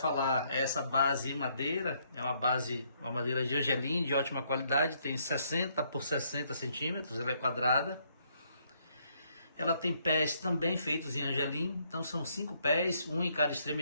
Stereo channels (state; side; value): inverted; both; correlation -0.71